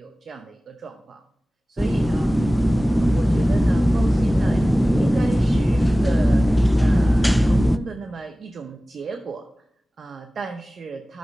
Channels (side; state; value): both; normal; correlation 0.97